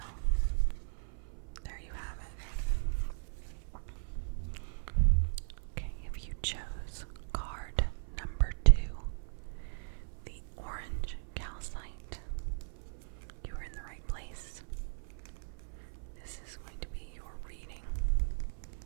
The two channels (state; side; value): silent; left; 53 dB below the other